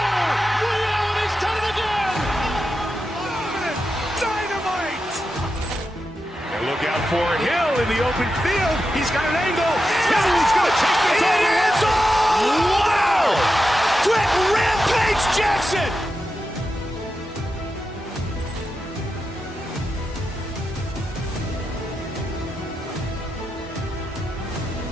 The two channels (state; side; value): normal; both; correlation 0.89